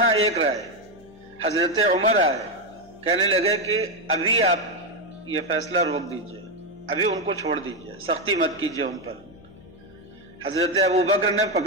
ایک رائے، حضرت عمر آئے کہنے لگے کہ ابھی آپ یہ فیصلہ روک دیجئے، ابھی ان کو چھوڑ دیجئے، سختی مت کیجئے ان پر۔ حضرت ابوبکر نے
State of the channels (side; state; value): left; noise; hum, 25 dB below the sound